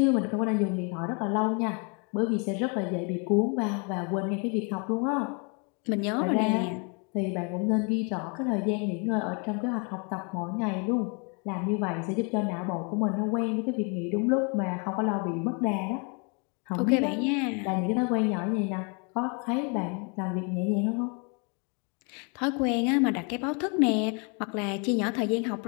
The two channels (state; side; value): quieter; right; 35.1 dB